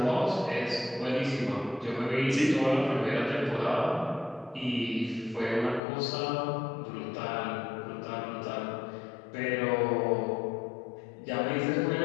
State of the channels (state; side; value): drops out; right; at 5.8 s